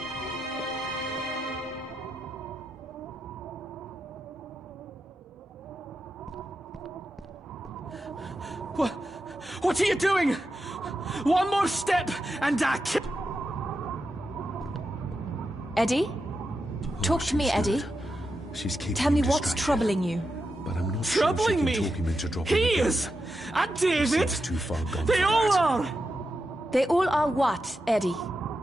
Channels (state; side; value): normal; both; correlation 0.88